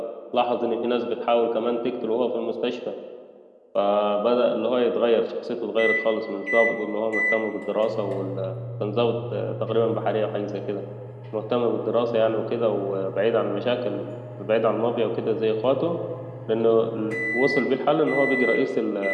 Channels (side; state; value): both; identical; correlation 1.00